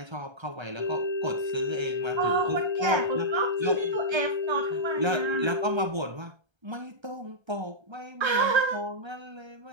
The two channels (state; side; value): late; left; 1.3 ms